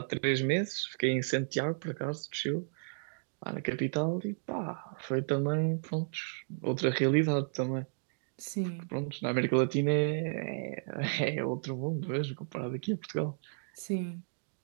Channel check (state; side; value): silent; left; digital silence